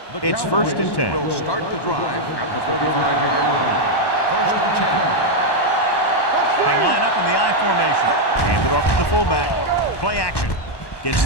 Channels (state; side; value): late; right; 1.1 ms